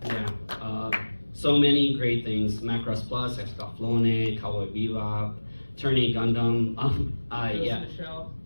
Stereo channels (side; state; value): both; inverted; correlation -1.00